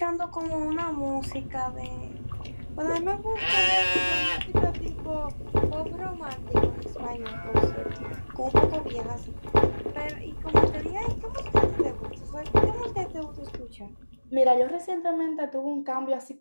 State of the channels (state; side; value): inverted; both; correlation -1.00